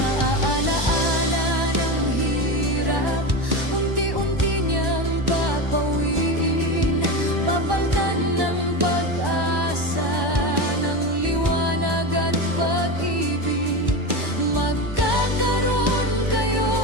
ng hirap, unti-unti niyang papawiin, papaltan ng pag-asa.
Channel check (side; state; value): left; late; 1.1 ms